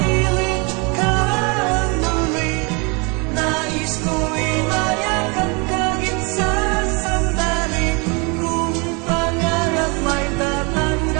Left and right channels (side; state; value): left; quieter; 30.8 dB